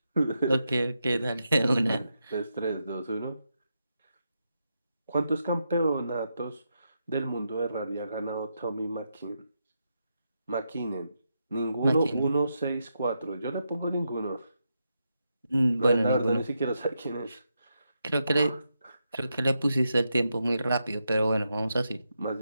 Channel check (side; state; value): both; inverted; correlation -0.84